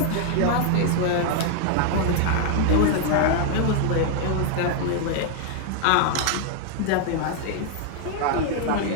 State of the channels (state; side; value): different; both; correlation 0.00